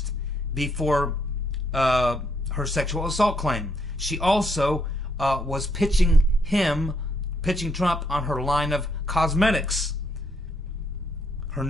before her sexual assault claim. She also was pitching Trump on her line of cosmetics, her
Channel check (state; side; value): normal; both; correlation 0.74